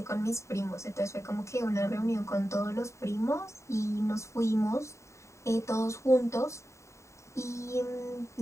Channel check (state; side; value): late; right; 0.14 ms